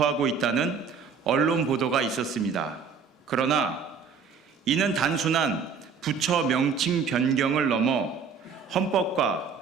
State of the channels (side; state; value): left; quieter; 5.9 dB